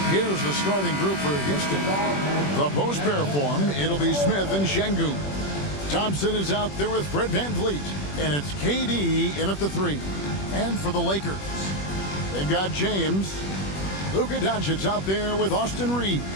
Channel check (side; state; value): right; late; 21 ms